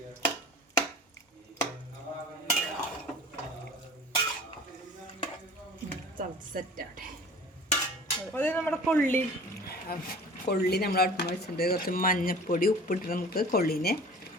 സെറ്റാട്ടെ. അത് നമ്മുടെ കൊള്ളി നമ്മൾ അടുപ്പ് വെച്ചിട്ട് കുറച്ച് മഞ്ഞപ്പൊടി ഉപ്പിട്ട് നമുക്ക് കൊള്ളിനെ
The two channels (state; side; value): normal; both; correlation 0.43